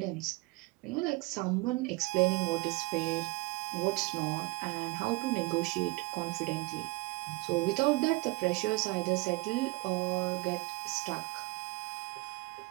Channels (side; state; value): left; quieter; 23.4 dB